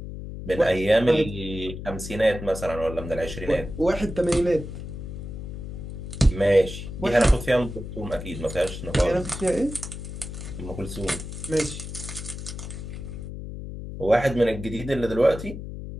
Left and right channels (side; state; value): left; noise; hum, 9 dB below the sound